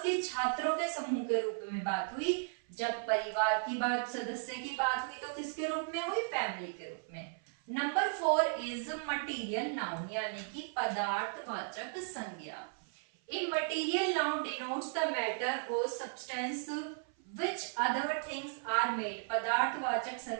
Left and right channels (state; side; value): silent; left; 54 dB below the other